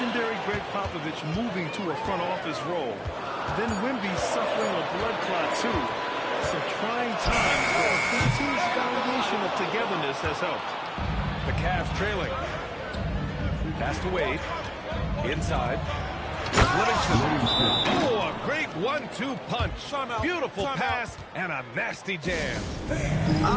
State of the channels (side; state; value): both; identical; correlation 1.00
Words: Greg Popovich moving to a front office role. Then Wemby suffering a blood clot, too. Some trying times, but this team's foundation of togetherness has helped. The Cavs trailing. Pass to Wade. Inside. Livingston. Oh, a great 1-2 punch. Beautiful pass and a nasty jam.